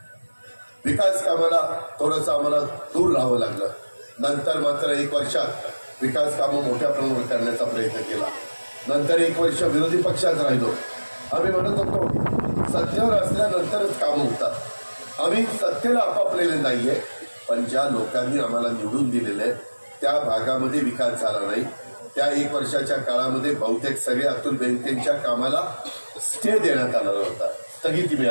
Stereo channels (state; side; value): inverted; both; correlation -1.00